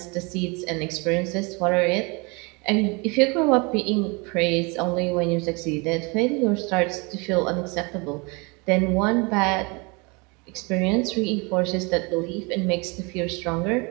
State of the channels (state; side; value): quieter; left; 28.9 dB